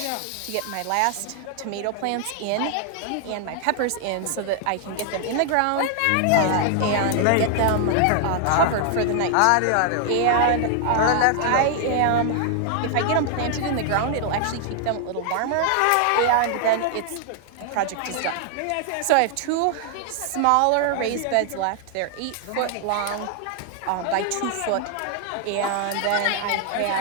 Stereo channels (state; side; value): different; both; correlation 0.00